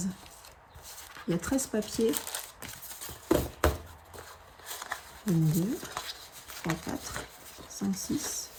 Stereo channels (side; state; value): both; identical; correlation 1.00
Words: Il y a 13 papiers. 1, 2, 3, 4, 5, 6,